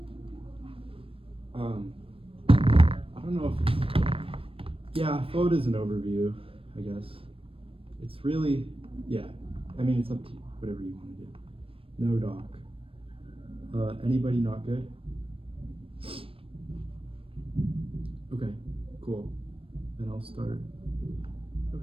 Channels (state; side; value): late; left; 0.27 ms